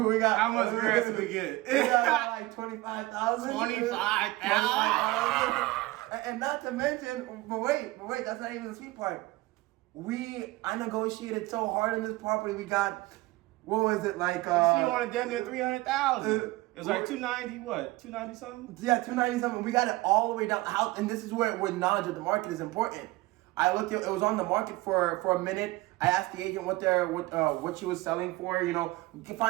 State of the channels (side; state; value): left; quieter; 20.2 dB